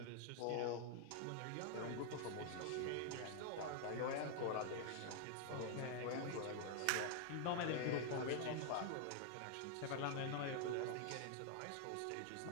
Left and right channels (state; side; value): different; both; correlation 0.00